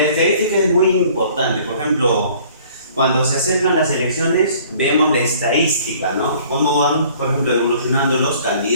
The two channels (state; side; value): inverted; both; correlation -0.53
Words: estadística es muy importante. Por ejemplo, cuando se acercan las elecciones, vemos la estadística, ¿no? Cómo van, por ejemplo, evolucionando los